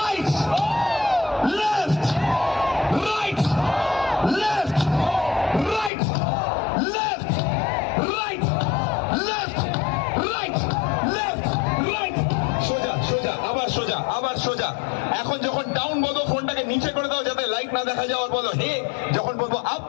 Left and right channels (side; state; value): right; drops out; at 5.9 s